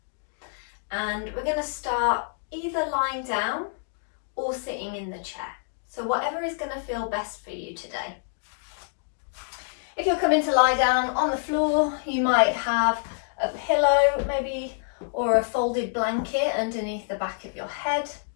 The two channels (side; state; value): right; silent; digital silence